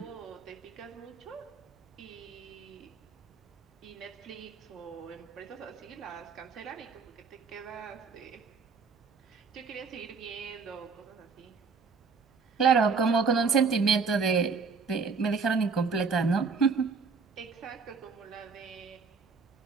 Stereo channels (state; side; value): quieter; left; 5.1 dB